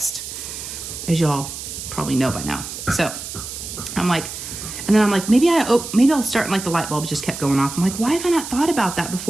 As y'all probably know by now. So I'm like, and then I'm like, maybe I'll start, and like the light bulbs just kept going off. I'm like, why have I not thought about that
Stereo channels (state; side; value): noise; right; hiss, 9 dB below the sound